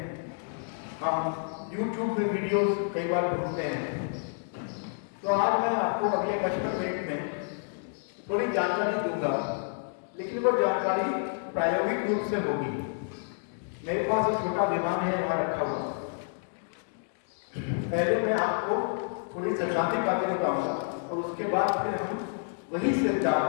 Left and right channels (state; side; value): silent; right; digital silence